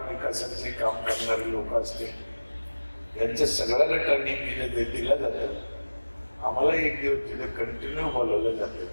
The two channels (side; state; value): both; inverted; correlation -1.00